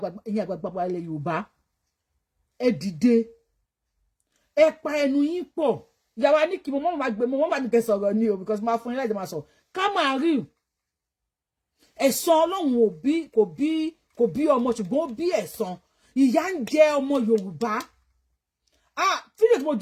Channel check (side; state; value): both; identical; correlation 1.00